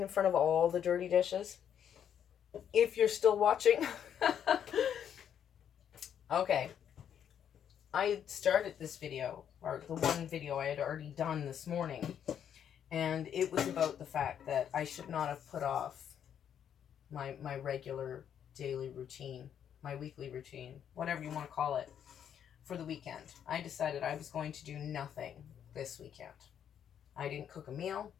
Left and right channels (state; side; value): quieter; right; 9.0 dB